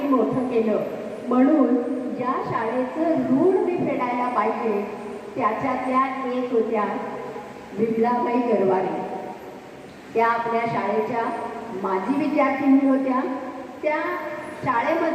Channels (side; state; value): both; identical; correlation 1.00